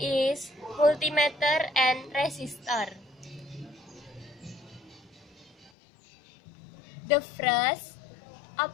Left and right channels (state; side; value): drops out; right; at 5.7 s